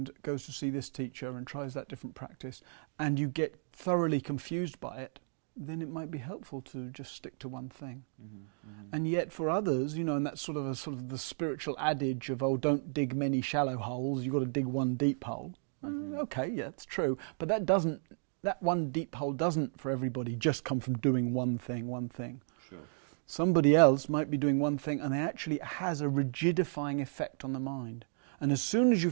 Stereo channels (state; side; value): silent; left; digital silence